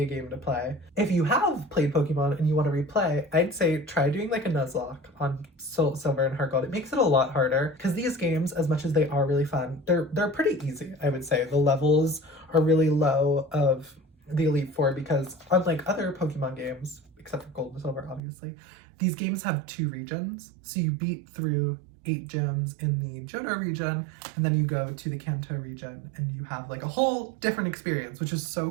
a game to play. If you have played Pokemon and you want to replay, I'd say try doing like a Nuzlocke on Soul Silver and Heart Gold. It makes it a lot harder because these games, as much as they are really fun, they're pretty easy, I would say. The levels are really low of the Elite Four because unlike other Pokemon games, except for Gold and Silver, obviously, these games have 2 regions. So you beat through 8 gyms in the Johto region, and then you go to the Kanto region, and you have like a whole different experience, which is so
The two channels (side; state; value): left; drops out; at 18.2 s